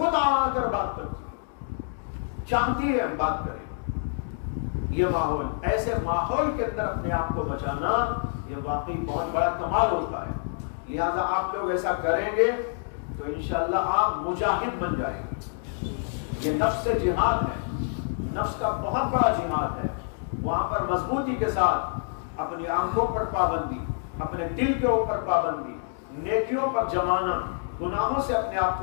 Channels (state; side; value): silent; right; digital silence